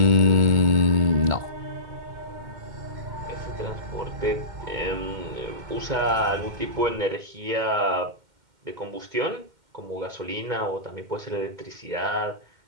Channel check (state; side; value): late; left; 2.1 ms